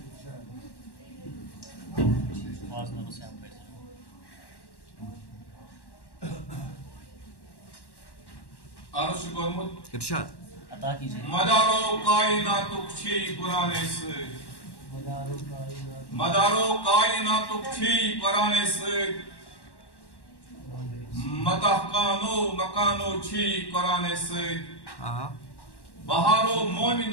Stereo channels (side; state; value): right; late; 1.1 ms